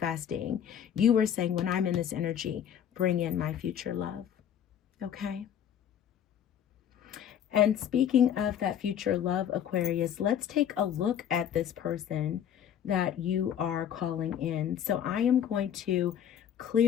You are saying, when I'm in this energy, bring in my future love. Okay? And speaking of that future love, Aquarius, let's take a look at this person that you are calling in. So I am going to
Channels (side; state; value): right; quieter; 9.4 dB